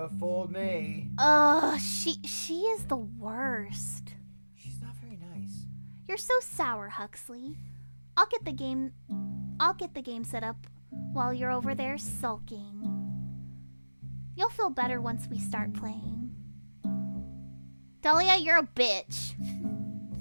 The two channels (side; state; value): both; inverted; correlation -1.00